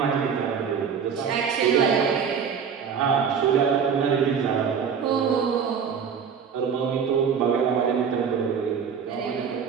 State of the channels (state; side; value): quieter; left; 6.9 dB